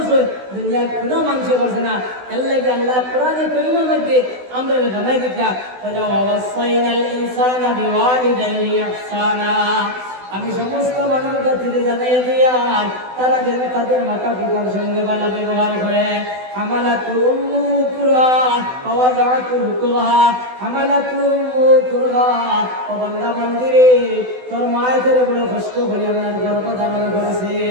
দুনিয়ার কোনো মানুষ করছে না এর লাগে আল্লাহ কোরআনে কারীমের মধ্যে আমরা জানাই দিতা ওয়াসাইনাল ইনসানা বিওয়ালিদাইহি ইহসানা আমি সমস্ত মানুষের কাছে জানাই দিয়া তারা যেন তাদের মাতা পিতার সঙ্গে ভালো ব্যবহার করে হামালাতু উম্মু কুরহা ওয়া ওয়াদাতু কুরহা হামালাতু উম্মু কুরহা ও বান্দা বান্দিরে তোর মায়ের তোরে বড় কষ্ট করে আপনার গর্ভ ধারণ করেছে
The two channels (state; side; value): late; left; 16 ms